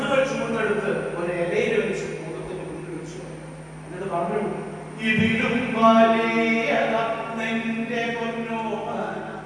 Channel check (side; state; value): both; identical; correlation 1.00